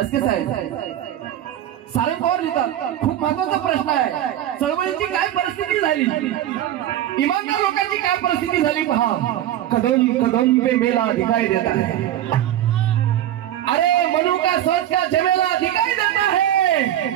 सारंग पवार लिहितात खूप महत्वाचा प्रश्न आहे. चळवळीची काय परिस्थिती झाली इमानदार लोकांची काय परिस्थिती झाली पहा. कदम कदम पे मेला दिखाई देता है अरे मनु का सोच का जमेला दिखाई देता है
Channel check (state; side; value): quieter; left; 12.2 dB